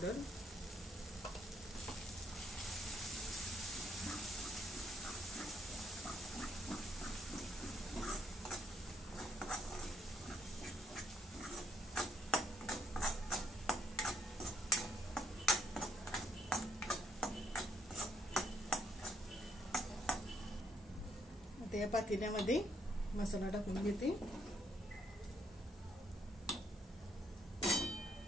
आता या पातेल्यामध्ये मसाला टाकून घेते.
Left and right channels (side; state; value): both; normal; correlation 0.73